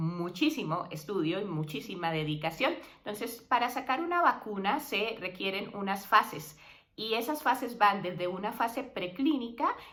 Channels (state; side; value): identical; both; correlation 1.00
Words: estudio y muchísima dedicación. Entonces, para sacar una vacuna se requieren unas fases y esas fases van desde una fase preclínica